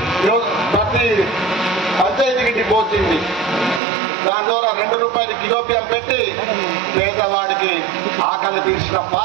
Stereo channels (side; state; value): left; drops out; at 3.8 s